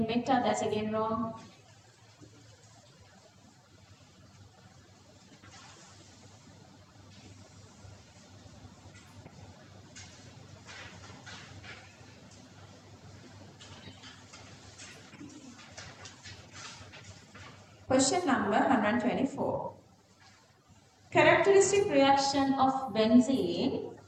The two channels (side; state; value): both; identical; correlation 1.00